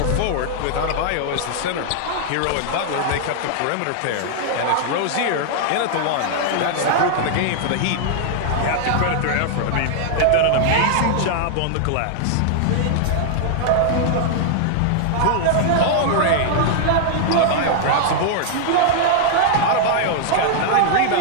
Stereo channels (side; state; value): both; different; correlation -0.01